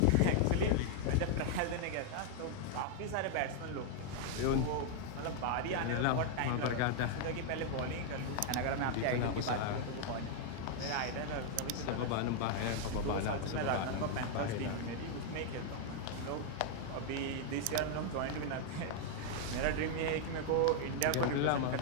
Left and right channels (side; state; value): both; different; correlation 0.00